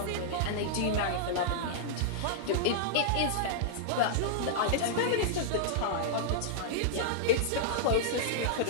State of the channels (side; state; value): both; different; correlation -0.02